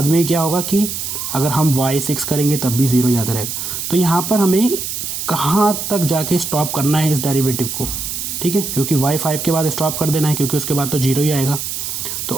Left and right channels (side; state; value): right; noise; hiss, 5 dB below the sound